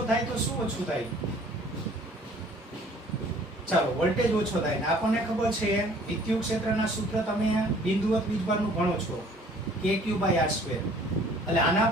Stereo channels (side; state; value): both; normal; correlation 0.54